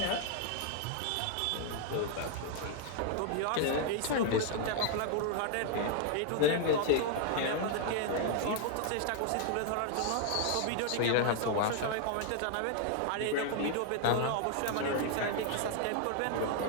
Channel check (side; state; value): both; different; correlation 0.00